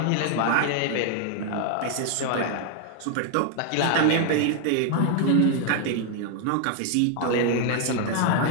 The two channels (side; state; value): both; different; correlation 0.00